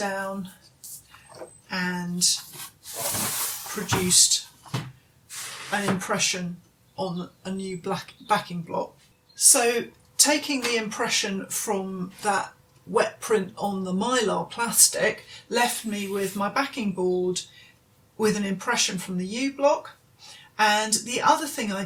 and produced an impression on a new black backing block. So taking the impression from that wet print on the mylar plastic left me with my backing board with an impression from the yew block. And the other thing I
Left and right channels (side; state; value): both; identical; correlation 1.00